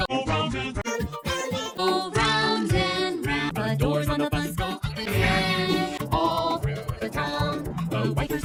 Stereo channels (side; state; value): both; identical; correlation 1.00